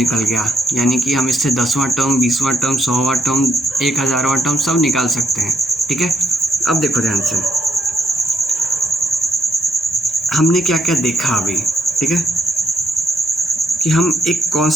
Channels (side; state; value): both; normal; correlation 0.72